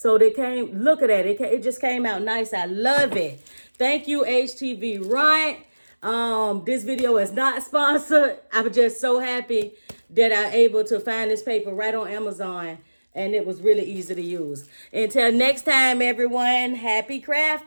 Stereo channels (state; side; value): inverted; both; correlation -1.00